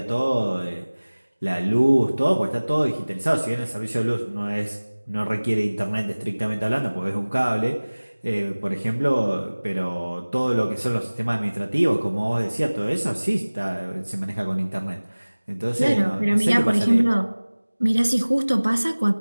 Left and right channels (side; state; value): both; inverted; correlation -1.00